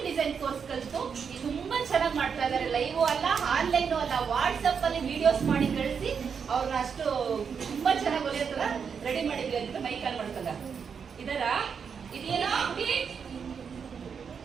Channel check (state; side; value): quieter; left; 6.5 dB